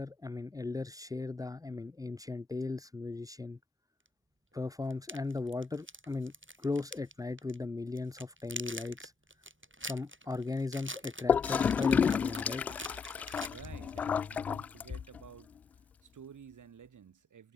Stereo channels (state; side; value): quieter; right; 4.9 dB